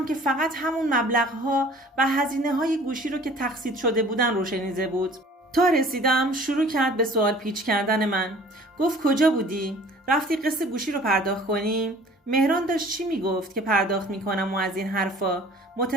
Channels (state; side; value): normal; both; correlation 0.50